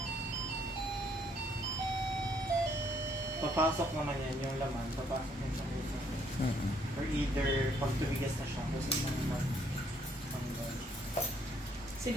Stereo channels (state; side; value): normal; both; correlation 0.67